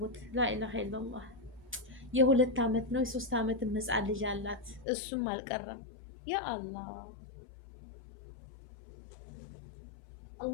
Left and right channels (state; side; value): drops out; right; at 4.9 s